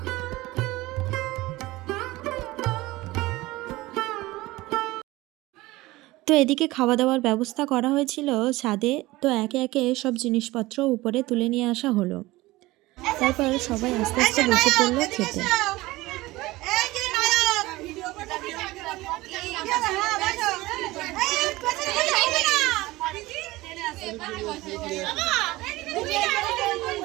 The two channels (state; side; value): quieter; left; 19.4 dB